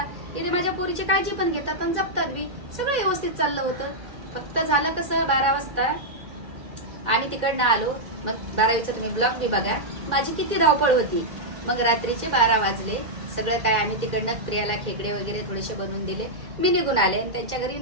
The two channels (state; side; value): late; left; 2.0 ms